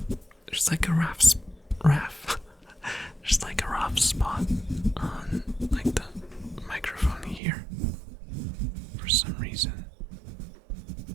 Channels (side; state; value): left; drops out; at 7.4 s